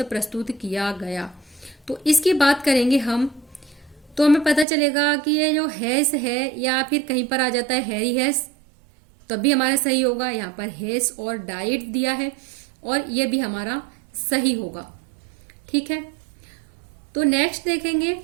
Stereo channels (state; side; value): drops out; left; at 4.7 s